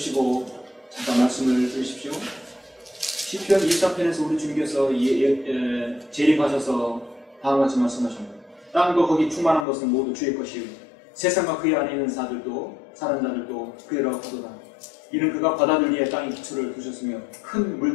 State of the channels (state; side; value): drops out; right; at 9.7 s